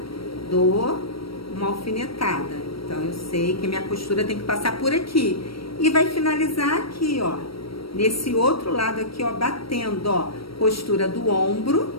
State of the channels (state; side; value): late; right; 0.75 ms